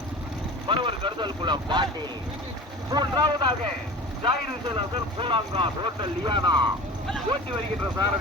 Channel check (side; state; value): both; normal; correlation 0.37